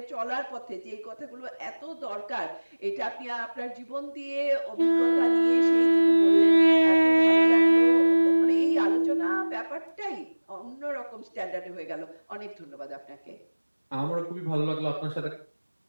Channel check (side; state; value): both; inverted; correlation -1.00